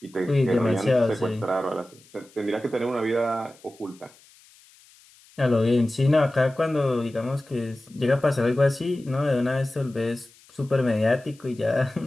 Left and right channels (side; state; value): left; noise; hiss, 27 dB below the sound